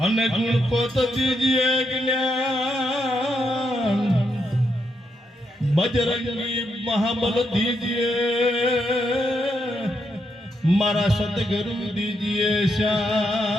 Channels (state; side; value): normal; both; correlation 0.80